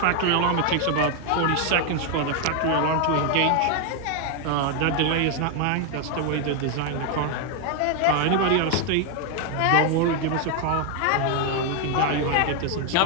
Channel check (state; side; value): different; both; correlation 0.01